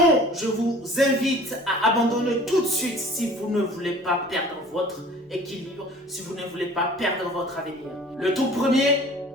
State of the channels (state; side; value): normal; both; correlation 0.47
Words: je vous invite à abandonner tout de suite si vous ne voulez pas perdre votre équilibre, si vous ne voulez pas perdre votre avenir. Le tout premier,